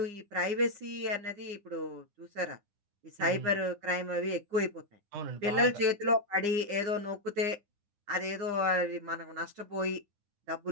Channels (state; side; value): late; left; 9.8 ms